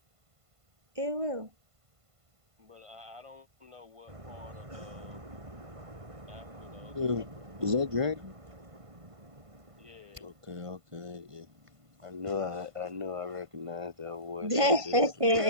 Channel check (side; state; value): left; late; 1.5 ms